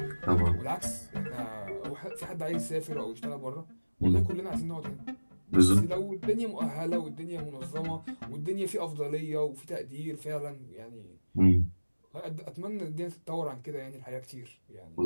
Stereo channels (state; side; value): inverted; both; correlation -1.00